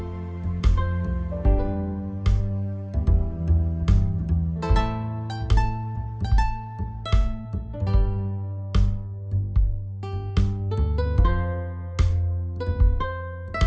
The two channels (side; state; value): both; identical; correlation 1.00